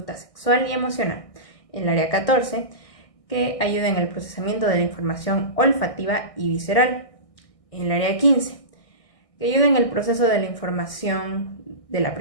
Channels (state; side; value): late; right; 1.6 ms